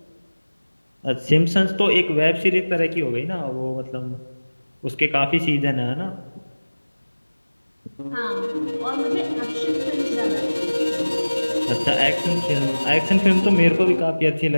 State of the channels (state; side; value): inverted; both; correlation -1.00